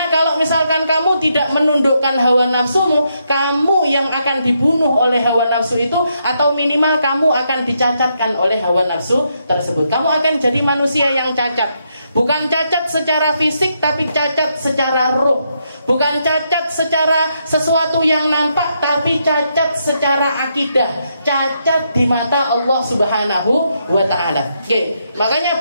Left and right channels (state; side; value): inverted; both; correlation -0.79